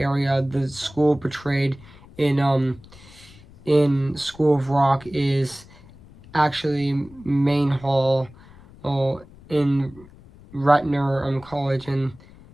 The school portrayed in School of Rock is actually Main Hall, in Ratner College in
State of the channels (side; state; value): left; noise; rumble, 22 dB below the sound